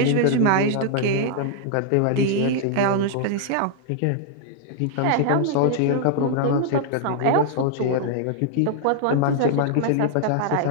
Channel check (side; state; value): both; different; correlation -0.01